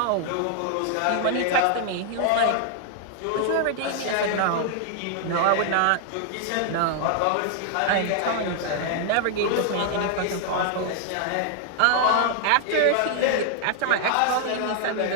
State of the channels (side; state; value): both; different; correlation 0.00